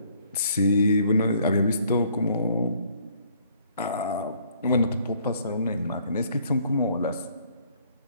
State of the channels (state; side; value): inverted; both; correlation -0.63